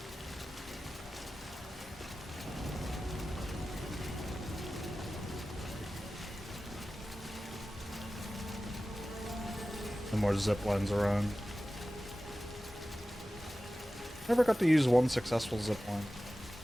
More zip lines around. Never got to use one successful zip line.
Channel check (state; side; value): normal; both; correlation 0.95